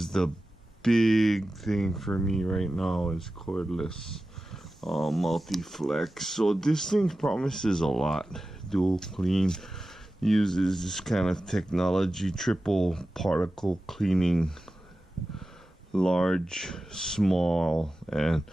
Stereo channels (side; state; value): both; normal; correlation 0.94